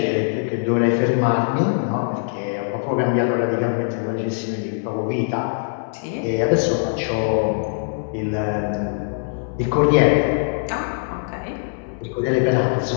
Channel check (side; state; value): right; silent; 64 dB below the other